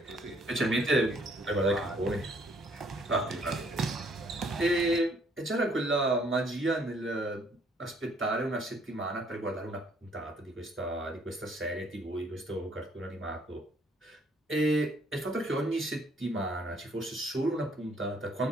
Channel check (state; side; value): normal; both; correlation 0.64